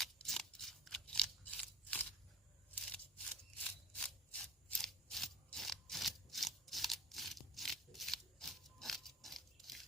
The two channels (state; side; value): normal; both; correlation 0.32